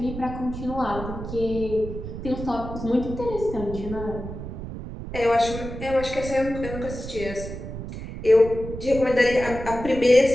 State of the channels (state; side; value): noise; right; rumble, 9 dB below the sound